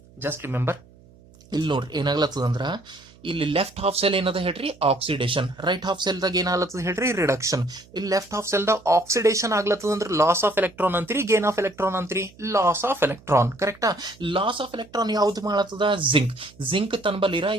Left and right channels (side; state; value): right; noise; hum, 26 dB below the sound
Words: Just remember, ಇಲ್ಲಿ ನೋಡ್ರಿ ಏನಾಗ್ಲತ್ತದ ಅಂದ್ರ ಇಲ್ಲಿ left half cell ಏನದ ಹೇಳ್ರಿ oxidation, right half cell ದಾಗ ಏನಾಗ್ಲತ್ತದ ಹೇಳ್ರಿ reduction. ಇಲ್ಲಿ left half cell ದಾಗ ಆಕ್ಸಿಡೇಷನ್ ಆಗ್ಲತ್ತದ ಅಂದ್ರೆ ಲಾಸ್ ಆಫ್ ಎಲೆಕ್ಟ್ರಾನ್ ಅಂತೀರಿ, ಗೇನ್ ಆಫ್ ಎಲೆಕ್ಟ್ರಾನ್ ಅಂತೀರಿ, ಲಾಸ್ ಆಫ್ ಎಲೆಕ್ಟ್ರಾನ್. ಕರೆಕ್ಟಾ? ಲಾಸ್ ಆಫ್ ಎಲೆಕ್ಟ್ರಾನ್ ಯಾವ್ದು ಮಾಡತ್ತದ? ಜಿಂಕ್ ತನ್ಬಲ್ಲಿರ